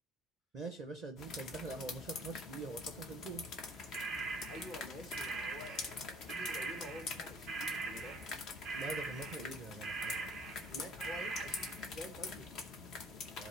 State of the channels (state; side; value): normal; both; correlation 0.54